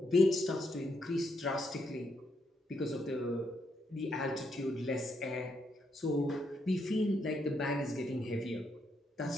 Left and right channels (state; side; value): normal; both; correlation 0.78